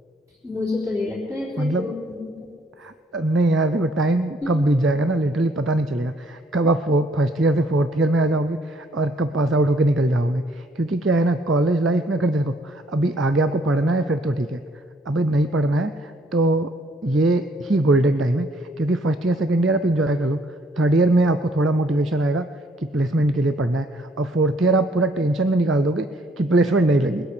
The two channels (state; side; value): normal; both; correlation 0.65